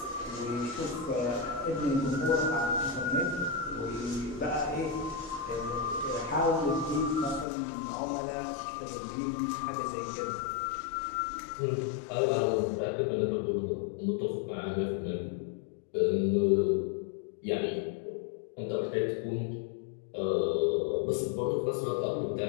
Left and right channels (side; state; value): right; drops out; at 7.5 s